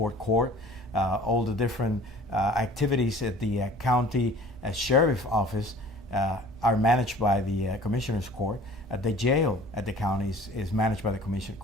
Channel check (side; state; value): both; normal; correlation 0.48